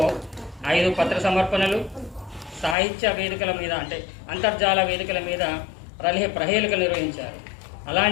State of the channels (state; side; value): drops out; right; at 2.8 s